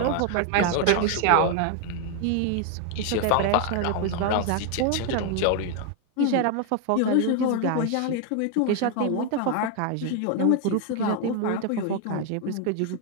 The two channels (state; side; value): different; both; correlation 0.01